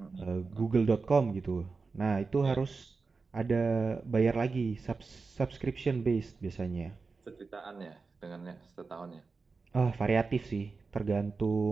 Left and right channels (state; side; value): quieter; left; 4.4 dB